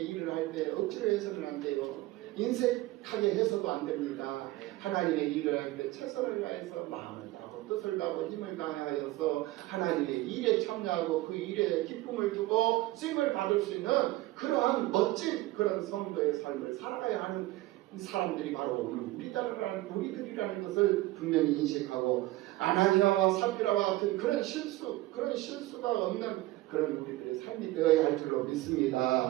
일을 할 때 억지로 해서는 안 돼요. 인색하게 해서도 안 됩니다. 하나님의 일을 할 때 최선을 다해서 마음을 다하고 뜻을 다하고 힘을 다하여서 하나님의 일에 참여하고 그 일에 기쁨을 두고 쓰임을 받을 수 있는 그러한 멋진 그런 성도의 삶을 살아가야 하는 사람들이 바로 오늘 우리들이라는 것을 분명히 인식하고 아나니아와 사피라와 같은 그런 실수가 없는 그런 우리들의 삶이 되어야 할 줄로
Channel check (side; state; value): left; quieter; 18.0 dB